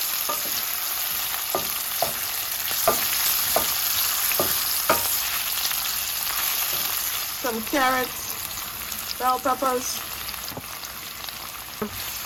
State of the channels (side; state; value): both; identical; correlation 1.00